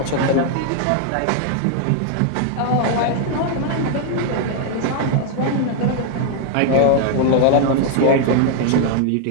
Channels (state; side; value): different; both; correlation 0.00